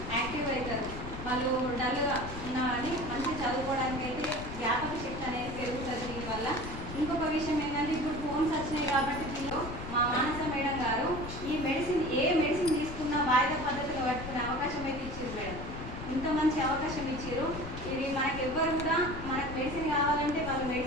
యాక్టివ్ అవుతారు. వాళ్ళు డల్గా ఉన్నా కానీ మంచి చదువుకోవడానికి అయితే జ్ఞాపక శక్తి అనేది పెరుగుతుంది దీనివల్ల. ఇంకొక విషయం ఏంటంటే ఇప్పుడు ఫోన్స్ వచ్చినాయి కాబట్టి దీనిలో మా మానస మేడం గారు ఈ మెడిసిన్ ఏ మెడిసిన్ తీసుకున్నా వాయిదా పద్ధతిలో పట్టుకునే అవకాశం అయితే ఇచ్చారు మేడం. ఇంత మంచి అవకాశం ఇచ్చారు. ఇది మనకు ఎవ్వరు కూడా మనకు మెడిసిన్ కావాలంటే వాళ్ళు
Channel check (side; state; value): left; noise; rumble, 9 dB below the sound